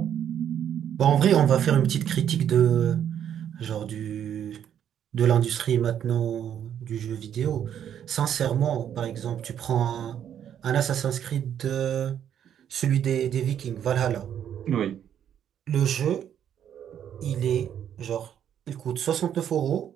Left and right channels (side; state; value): left; quieter; 9.5 dB